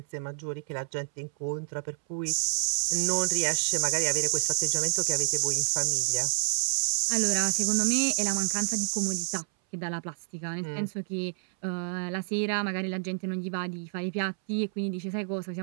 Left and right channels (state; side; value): silent; left; 59 dB below the other